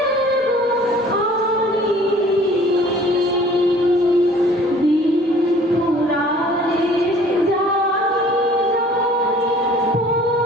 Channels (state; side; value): normal; both; correlation 0.51